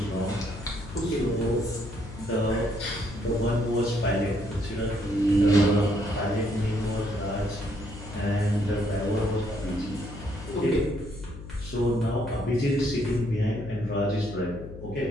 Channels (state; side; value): noise; left; hum, 13 dB below the sound